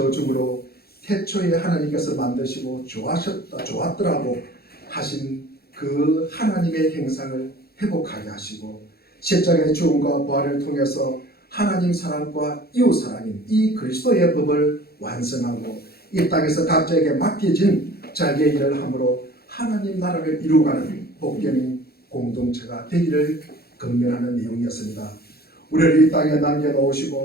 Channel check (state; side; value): late; right; 0.45 ms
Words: 태초에 하나님께서 만드시고 좋았더라고 하신 그 하나님의 형상을 회복하게 하시고 십자가의 죽음과 부활을 통해서 하나님 사랑과 이웃 사랑인 이 그리스도의 법을 완성하고 이 땅에서 각자에게 맡겨진 자기의 일을 함으로 하나님 나라를 이루어가는 복된 공동체가 되기를 건면하는 내용이었습니다. 우리를 이 땅에